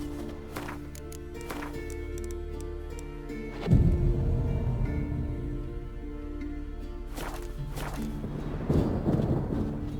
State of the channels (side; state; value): both; identical; correlation 1.00